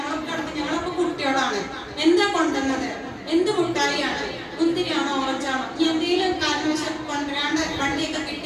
കുട്ടികളാണ്. എന്താ കൊണ്ടുവന്നത്, എന്ത് മുട്ടായിയാണ്, മുന്തിരിയാണോ ഓറഞ്ചാണോ, എന്തെങ്കിലും കാരണവശാൽ കൊണ്ടുവരാണ്ട് വണ്ടിയൊക്കെ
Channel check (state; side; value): identical; both; correlation 1.00